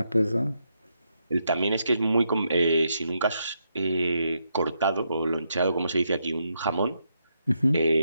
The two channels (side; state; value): both; inverted; correlation -0.81